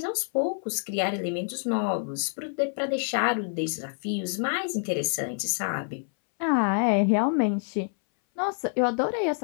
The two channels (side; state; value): right; silent; 60 dB below the other